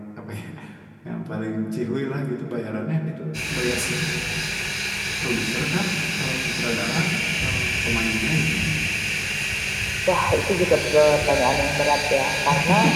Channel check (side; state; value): both; identical; correlation 1.00